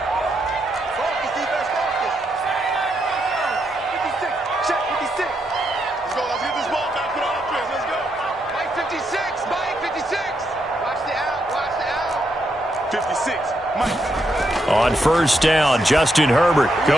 On first down, Justin Herbert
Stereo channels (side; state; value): both; normal; correlation 0.80